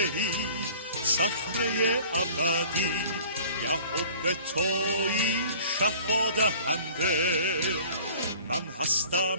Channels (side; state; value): both; inverted; correlation -0.47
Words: ای صخره ابدی، یهوه تویی شفا دهنده. من